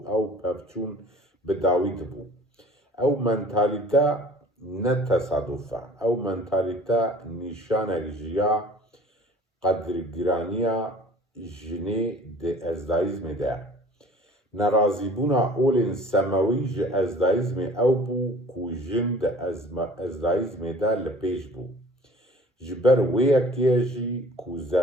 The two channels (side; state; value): both; normal; correlation 0.47